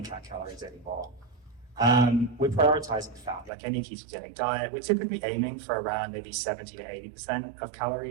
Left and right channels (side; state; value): left; drops out; at 3.5 s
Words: count calories anymore. We're prioritizing fat, like any ketogenic diet. We're typically aiming for around maybe 70 to 80% of